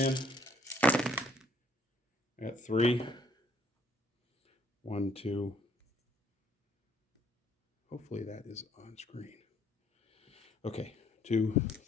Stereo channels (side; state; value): both; normal; correlation 0.63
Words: I got 3. 1, 2. Hopefully that is on screen. Okay, 2,